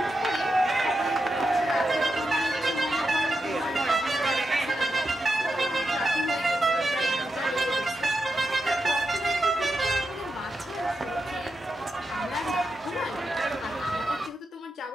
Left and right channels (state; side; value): normal; both; correlation 0.88